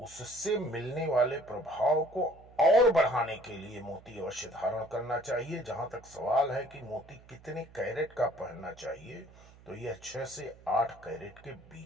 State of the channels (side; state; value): right; noise; hum, 23 dB below the sound